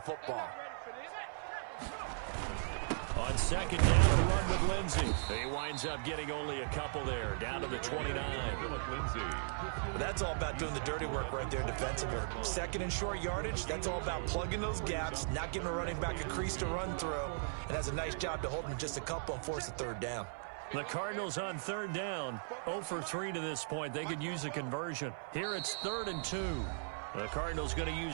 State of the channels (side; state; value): left; silent; 53 dB below the other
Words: football. On 2nd down, a run with Lindsey. He winds up getting only a couple there, down to the 29. That's all about doing the dirty work right there defensively. 2nd and short yardage, that's all about plugging those gaps, not giving a running back a crease to run through, and has a nice job to hold him just a couple and force a 3rd down. The Cardinals on 3rd down, 0 for 3 to this point. They could use a conversion. Here it's 3rd and 2. The Cardinals going to